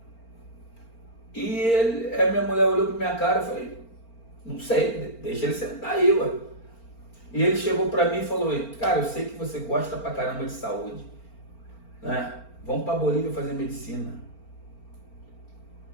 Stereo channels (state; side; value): late; right; 4.4 ms